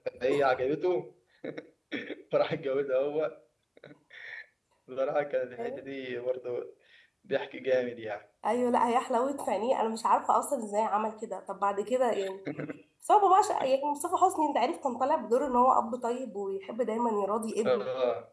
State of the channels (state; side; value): identical; both; correlation 1.00